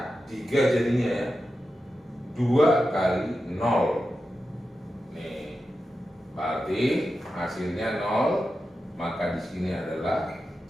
3 jadinya ya. 2 kali 0. Nih, berarti hasilnya 0, maka di sini adalah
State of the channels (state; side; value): normal; both; correlation 0.91